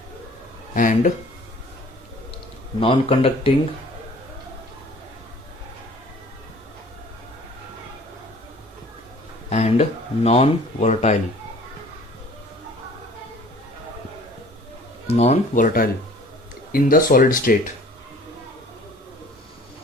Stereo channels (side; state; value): both; normal; correlation 0.50